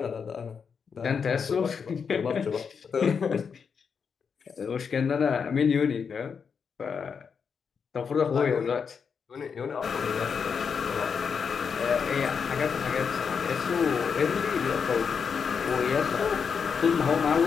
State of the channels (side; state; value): right; quieter; 6.2 dB